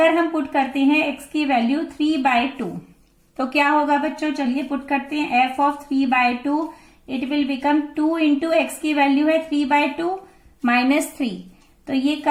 हम पुट करते हैं x की वैल्यू 3/2, तो क्या होगा बच्चों, चलिए पुट करते हैं f of 3/2, it will become 2 into x की वैल्यू है 3/2 माइनस 3, तो ये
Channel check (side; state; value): both; identical; correlation 1.00